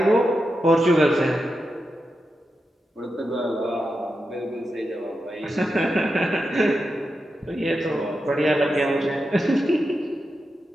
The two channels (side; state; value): both; normal; correlation 0.88